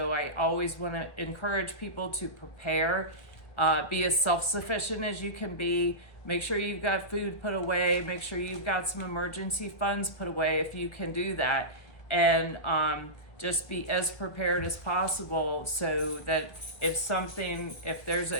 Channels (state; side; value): late; right; 1.7 ms